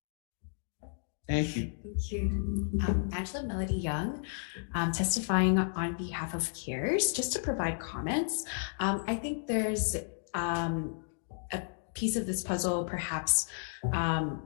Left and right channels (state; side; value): silent; right; digital silence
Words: Thank you. Thank you. Angela Melody Young, testifying on behalf of CARES, just to provide comments. I think there's a piece of this puzzle perhaps